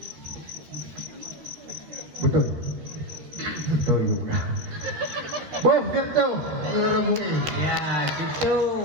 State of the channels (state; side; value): late; left; 13 ms